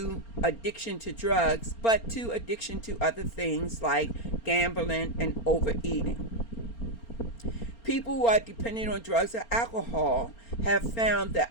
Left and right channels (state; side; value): late; right; 4.3 ms